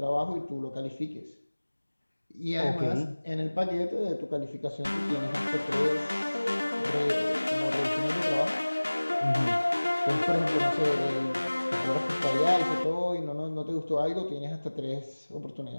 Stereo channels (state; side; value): inverted; both; correlation -1.00